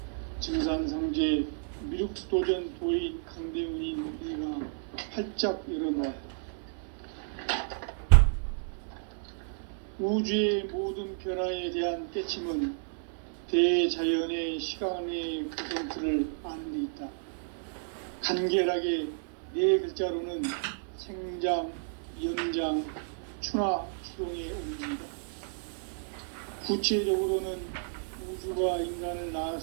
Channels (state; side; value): silent; left; 55 dB below the other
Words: 증산상제 미륵도전 도인 강대훈인 이가 활짝 열어놓았다. 우주의 모든 변화에 대한 깨침은 대자연의 시간의 구성틀을 아는 데 있다. 간결하게 네 글자로는 생장, 연장, 추나 추동의 의미입니다. 구체적으로는 우주가 인간을